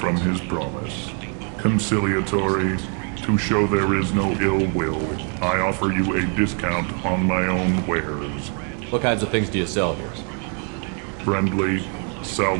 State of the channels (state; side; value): quieter; left; 39.6 dB